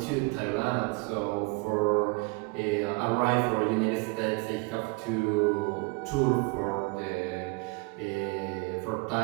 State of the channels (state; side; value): quieter; left; 28.6 dB